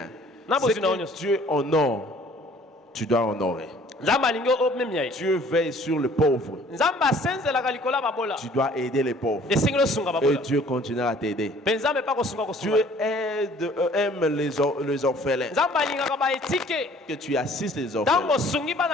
Ce que Dieu honore, tu dois honorer. Dieu veille sur le pauvre. Tu dois aider les pauvres. Et Dieu continuera à t'aider. Dieu aime les orphelins. Que tu assistes les orphelins,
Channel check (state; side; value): normal; both; correlation 0.55